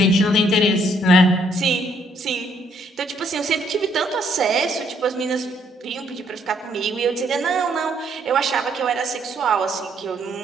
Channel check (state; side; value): normal; both; correlation 0.69